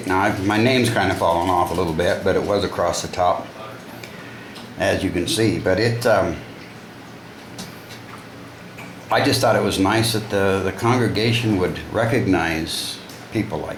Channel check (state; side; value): identical; both; correlation 1.00